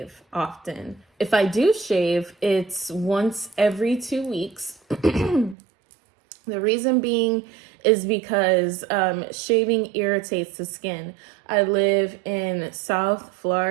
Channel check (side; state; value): left; drops out; at 5.6 s